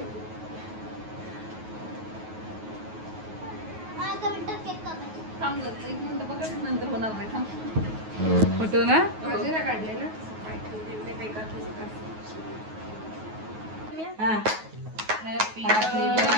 फोटो ना हा. Happy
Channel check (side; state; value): left; late; 9.3 ms